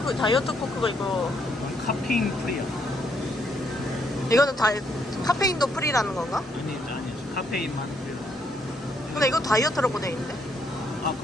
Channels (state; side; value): normal; both; correlation 0.73